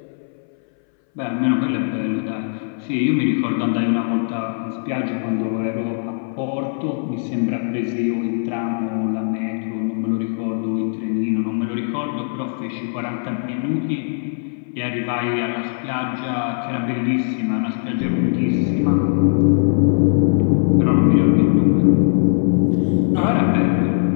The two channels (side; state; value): right; silent; 62 dB below the other